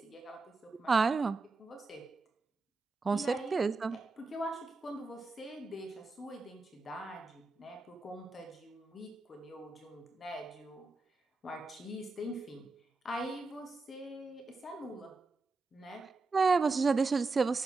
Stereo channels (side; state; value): left; quieter; 3.8 dB